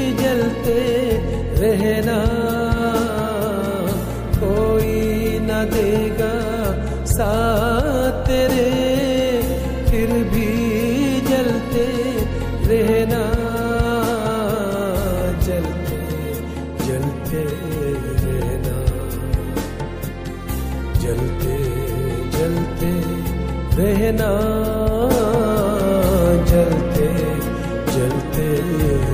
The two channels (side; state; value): both; identical; correlation 1.00